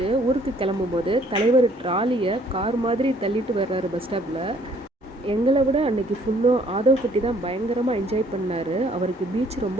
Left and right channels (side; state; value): both; normal; correlation 0.61